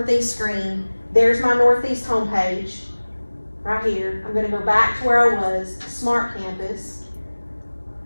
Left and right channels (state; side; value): inverted; both; correlation -1.00